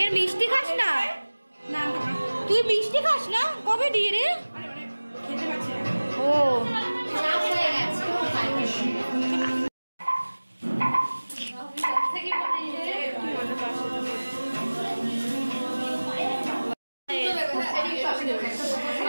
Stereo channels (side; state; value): both; inverted; correlation -1.00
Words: মিষ্টি খাস না? তুই মিষ্টি খাস না? কবে দিয়ে রে? ও